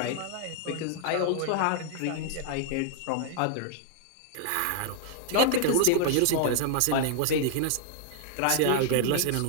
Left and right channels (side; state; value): both; different; correlation 0.00